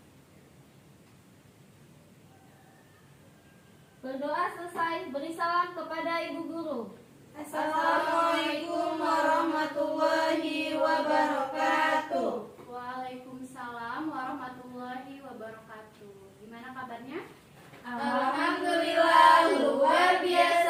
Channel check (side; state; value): both; identical; correlation 1.00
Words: Berdoa selesai, beri salam kepada ibu guru. Assalamualaikum warahmatullahi wabarakatuh. Waalaikumsalam warahmatullahi wabarakatuh. Gimana kabarnya? Alhamdulillah, luar